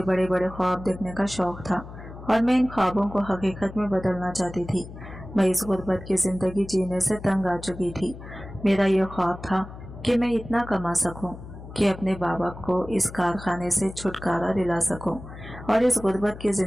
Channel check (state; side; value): noise; left; hum, 14 dB below the sound